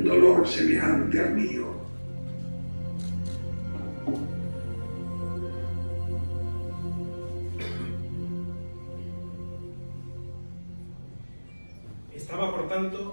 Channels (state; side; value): inverted; both; correlation -1.00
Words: dolor semejante al mío. Estaba, por